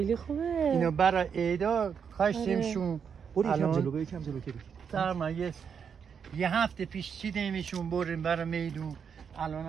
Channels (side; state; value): left; quieter; 7.0 dB